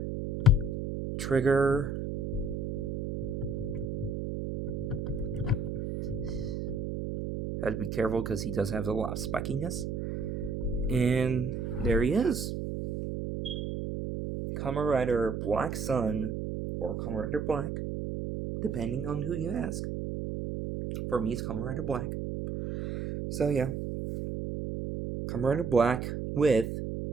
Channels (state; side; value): noise; right; hum, 3 dB below the sound